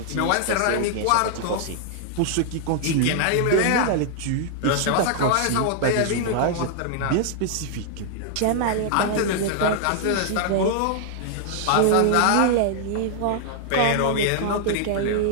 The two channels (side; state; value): both; different; correlation -0.01